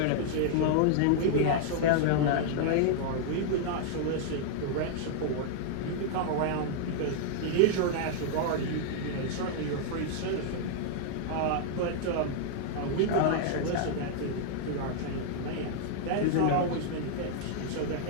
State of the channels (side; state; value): both; different; correlation -0.01